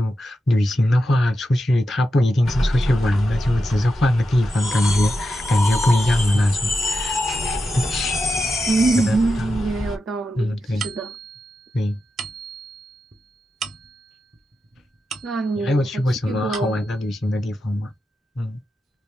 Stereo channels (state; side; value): normal; both; correlation 0.89